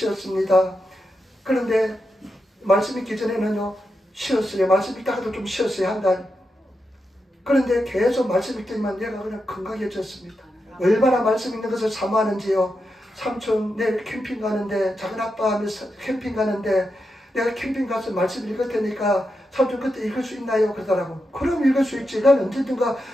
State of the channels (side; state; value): both; normal; correlation 0.87